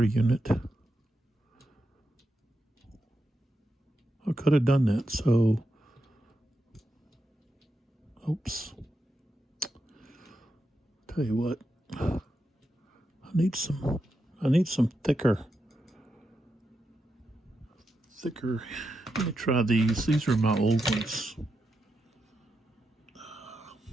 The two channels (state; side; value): normal; both; correlation 0.86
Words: unit, I could have done that. So, oops. Tell you what, I need some thicker. Let me try these. These are my old ones.